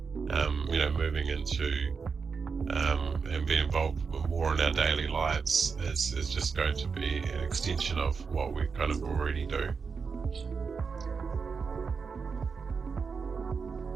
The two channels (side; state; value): left; quieter; 5.4 dB